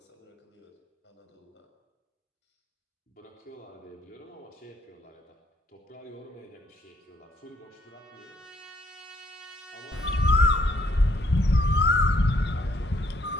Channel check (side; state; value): both; normal; correlation 0.69